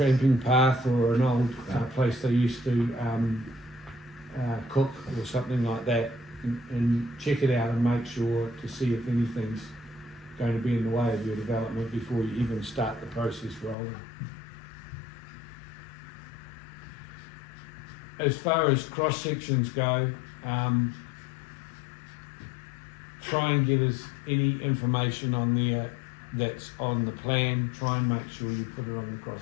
path, or an old place they used to cook or something like that, and check it out and make sure to see if anything's going to be in the way of your development before you even start the process rolling. As far as cross sections go, try and get us any information on there that's on the plan. Try and make sure you put it on the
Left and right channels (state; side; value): drops out; right; at 13.8 s